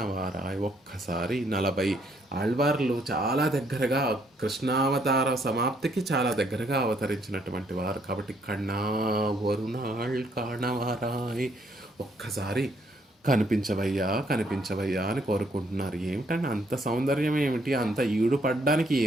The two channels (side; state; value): both; normal; correlation 0.69